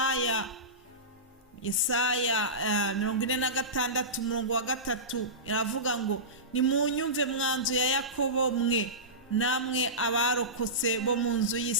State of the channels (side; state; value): both; normal; correlation -0.20